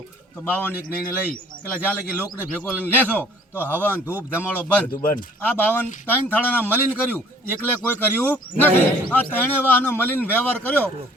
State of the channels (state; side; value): normal; both; correlation 0.55